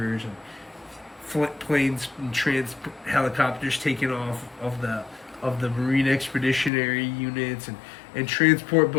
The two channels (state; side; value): drops out; right; at 6.7 s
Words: and planes and helicopters taking off of the Marine Expeditionary Units and transport